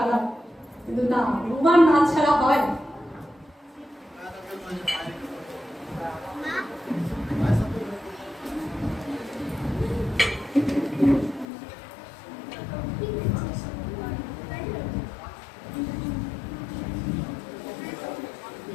কিন্তু না, রুমার নাচ ছাড়া হয়।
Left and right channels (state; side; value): drops out; right; at 11.5 s